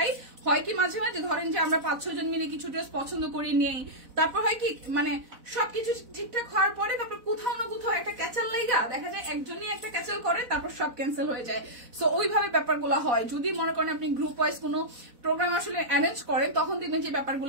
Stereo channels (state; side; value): late; left; 4.0 ms